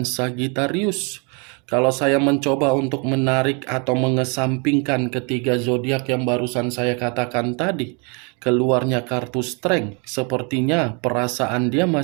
Sagittarius. Kalau saya mencoba untuk menarik atau mengesampingkan ketiga zodiak yang barusan saya katakan tadi, keluarnya kartu Strength, sepertinya perasaan dia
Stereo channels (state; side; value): quieter; left; 34.1 dB